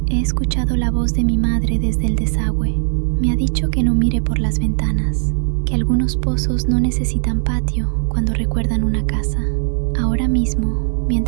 he escuchado la voz de mi madre desde el desagüe. Me ha dicho que no mire por las ventanas, que algunos pozos no necesitan patio cuando recuerdan una casa. Ahora mismo,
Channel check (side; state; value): left; silent; 62 dB below the other